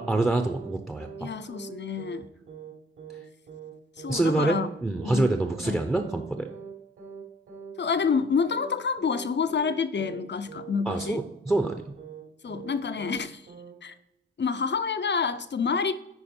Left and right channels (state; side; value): normal; both; correlation 0.50